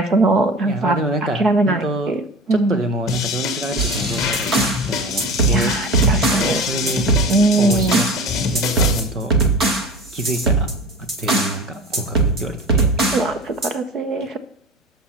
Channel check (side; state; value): both; normal; correlation 0.33